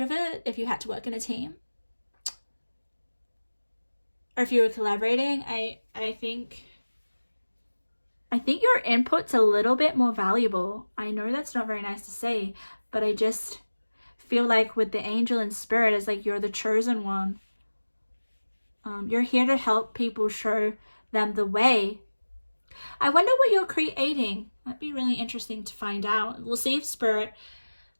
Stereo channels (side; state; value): both; inverted; correlation -1.00